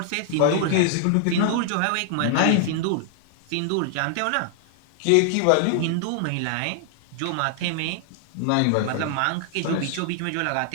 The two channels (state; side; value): different; both; correlation -0.01